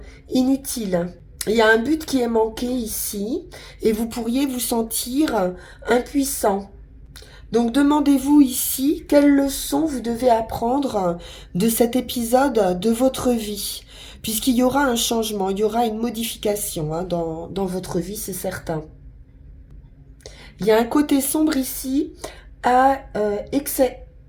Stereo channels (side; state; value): both; identical; correlation 1.00